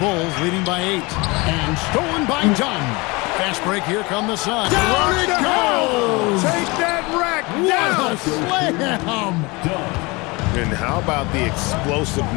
Bulls leading by 8. And stolen by Dunn. Fast break, here come the Suns. Down it goes! Take that rack down! What a slam! And how about the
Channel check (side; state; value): right; quieter; 25.3 dB